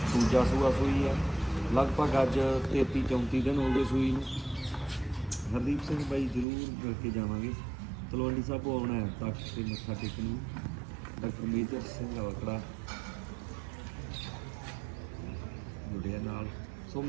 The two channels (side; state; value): left; drops out; at 6.5 s